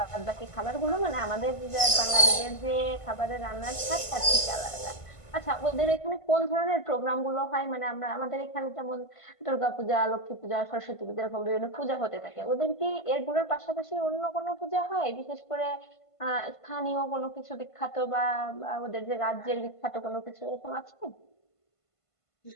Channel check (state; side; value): late; right; 1.5 ms